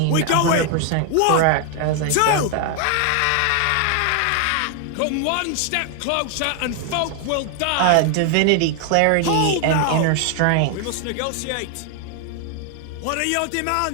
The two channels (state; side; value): different; both; correlation 0.00